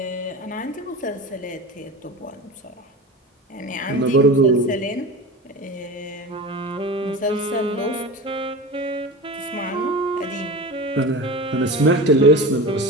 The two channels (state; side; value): normal; both; correlation 0.30